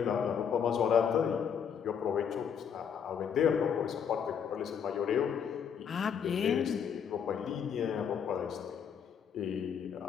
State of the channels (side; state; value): right; quieter; 7.5 dB